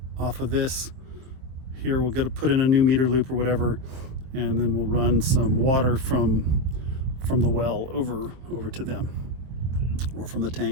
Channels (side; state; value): left; late; 24 ms